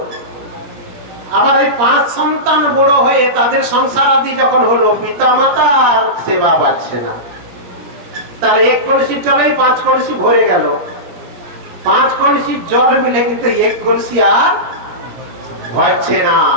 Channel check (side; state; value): left; late; 17 ms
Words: আবার এই 5 সন্তান বড় হয়ে তাদের সংসার আদি যখন হলো, পিতা মাতা আর সেবা পাচ্ছে না। তাহলে 1 কলসির জলেই 5 কলসি ভরে গেল। 5 কলসির জল মিলে কিন্তু 1 কলসি আর ভরছে না।